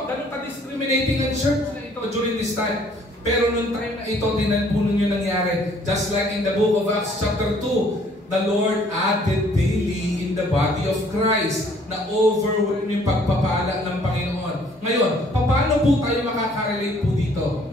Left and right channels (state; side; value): normal; both; correlation 0.60